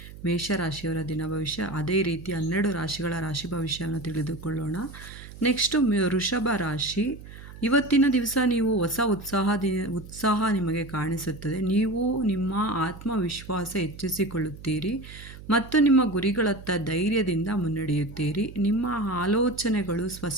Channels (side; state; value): right; noise; hum, 16 dB below the sound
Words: ಮೇಷರಾಶಿಯವರ ದಿನ ಭವಿಷ್ಯ. ಅದೇ ರೀತಿ 12 ರಾಶಿಗಳ ರಾಶಿ ಭವಿಷ್ಯವನ್ನು ತಿಳಿದುಕೊಳ್ಳೋಣ. ನೆಕ್ಸ್ಟು ವೃಷಭ ರಾಶಿ. ಇವತ್ತಿನ ದಿವಸ ನೀವು ಹೊಸ ಉತ್ಸಾಹ ನಿಮಗೆ ಕಾಣಿಸುತ್ತದೆ. ನೀವು ನಿಮ್ಮ ಆತ್ಮವಿಶ್ವಾಸ ಹೆಚ್ಚಿಸಿಕೊಳ್ಳುತ್ತೀರಿ ಮತ್ತು ನಿಮ್ಮ ಗುರಿಗಳತ್ತ ಧೈರ್ಯದಿಂದ ಮುನ್ನಡೆಯುತ್ತೀರಿ. ನಿಮ್ಮ ಆಲೋಚನೆಗಳು